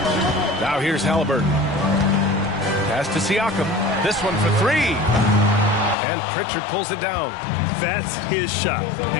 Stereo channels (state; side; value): drops out; right; at 6.0 s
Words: Now here's Halliburton. Pass to Siakam. This one for 3. And Pritchard pulls it down. That's his shot.